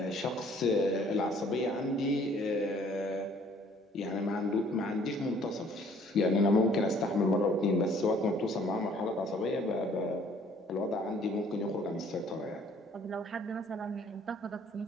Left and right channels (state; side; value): normal; both; correlation 0.58